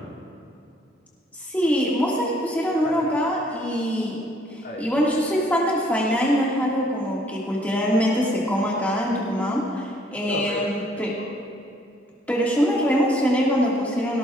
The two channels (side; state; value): both; normal; correlation 0.63